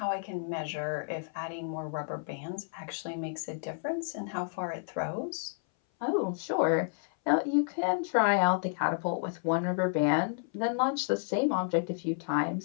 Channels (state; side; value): silent; right; 57 dB below the other